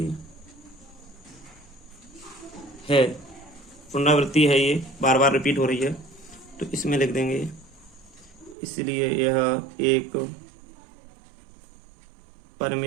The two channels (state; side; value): drops out; left; at 8.6 s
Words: है, पुनरावृत्ति है, ये बार बार रिपीट हो रही है, तो इसमें लिख देंगे, इसलिए यह एक